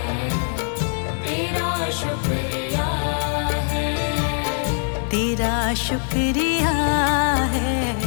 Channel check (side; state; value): right; silent; 58 dB below the other